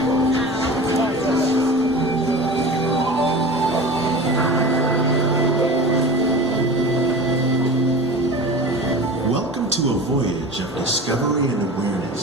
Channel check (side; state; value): both; normal; correlation 0.34